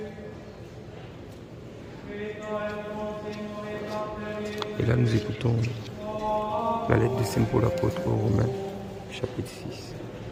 Et là, nous écoutons la lettre de Saint Paul apôtre aux Romains, chapitre 6,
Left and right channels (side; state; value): both; identical; correlation 1.00